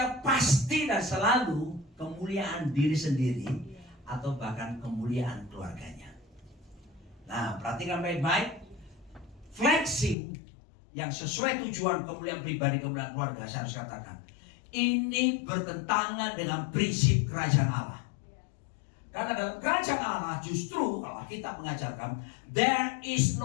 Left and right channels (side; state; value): right; drops out; at 10.2 s